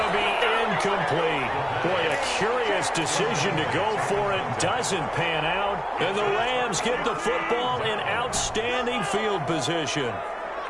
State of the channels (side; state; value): both; identical; correlation 1.00